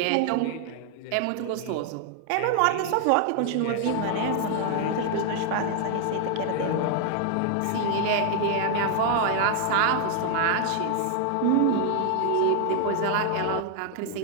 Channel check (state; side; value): different; both; correlation 0.00